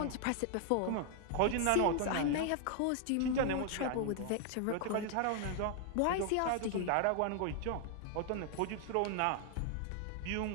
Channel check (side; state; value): both; different; correlation 0.00